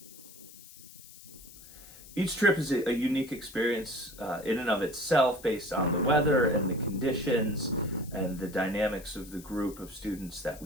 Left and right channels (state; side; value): noise; left; hiss, 19 dB below the sound